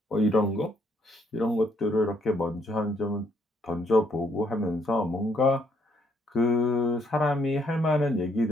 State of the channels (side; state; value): both; normal; correlation 0.70